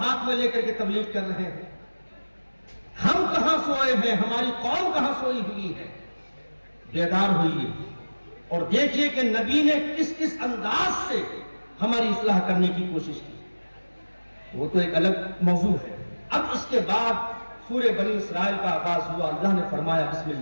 میں لے کر کے تبلیغ کر رہے ہیں۔ ہم کہاں سوئے ہیں، ہماری قوم کہاں سوئی ہوئی ہے؟ بیدار ہوئیے اور دیکھیے کہ نبی نے کس کس انداز سے ہماری اصلاح کرنے کی کوشش کی، وہ تو ایک الگ موضوع ہے۔ اب اس کے بعد سورہ بنی اسرائیل کا آغاز ہوا۔ اللہ نے فرمایا بسم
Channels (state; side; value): inverted; both; correlation -1.00